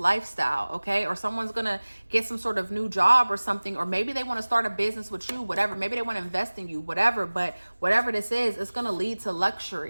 okay? Or someone's going to get some sort of new job or something, or maybe they want to start a business with you, whatever. Maybe they want to invest in you, whatever. But whatever this is, it's going to lead to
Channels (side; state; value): both; inverted; correlation -1.00